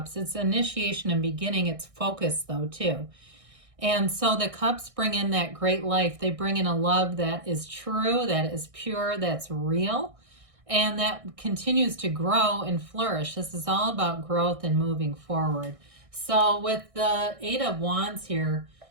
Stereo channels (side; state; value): left; late; 1.6 ms